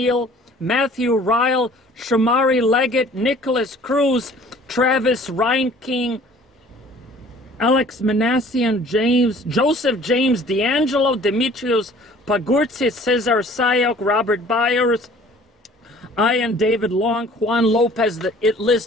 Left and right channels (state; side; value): normal; both; correlation 0.52